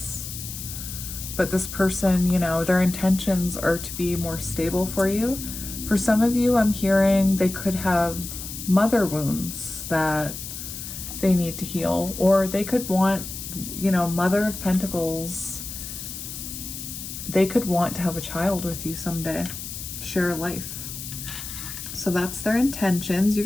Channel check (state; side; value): noise; left; hiss, 9 dB below the sound